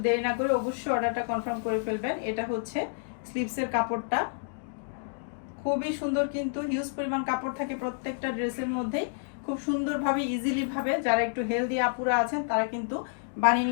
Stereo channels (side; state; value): right; silent; digital silence